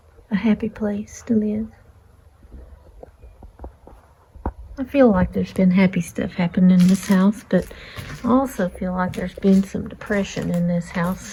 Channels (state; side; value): identical; both; correlation 1.00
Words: A happy place to live. I feel like there's been happy stuff happening in this house, but I also feel like there's been some depression in this